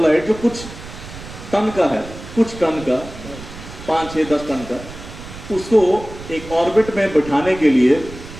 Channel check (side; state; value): right; noise; rumble, 14 dB below the sound